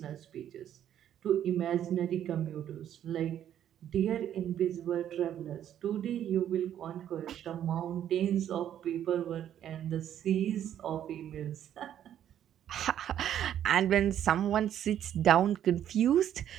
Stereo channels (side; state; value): left; quieter; 10.5 dB